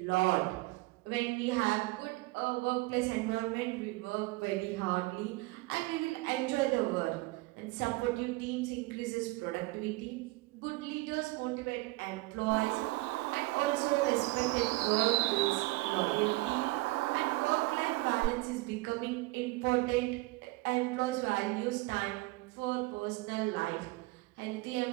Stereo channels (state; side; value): quieter; left; 21.7 dB